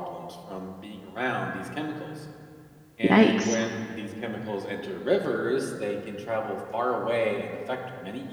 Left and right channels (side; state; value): both; identical; correlation 1.00